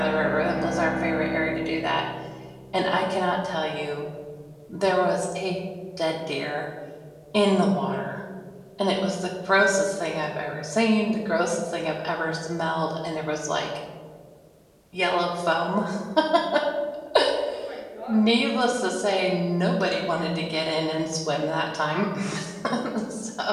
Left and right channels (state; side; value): identical; both; correlation 1.00